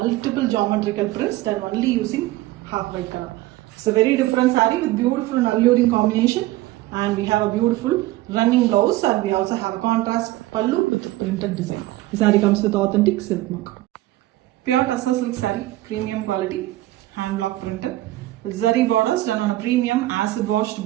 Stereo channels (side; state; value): left; quieter; 16.9 dB